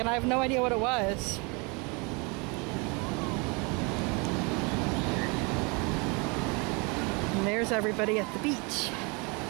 I have no idea what it was. And there's everybody at the beach.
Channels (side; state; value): left; quieter; 30.3 dB